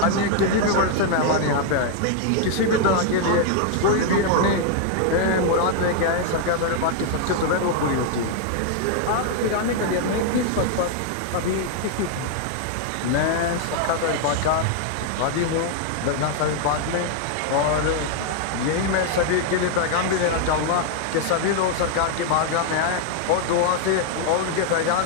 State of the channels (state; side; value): different; both; correlation 0.00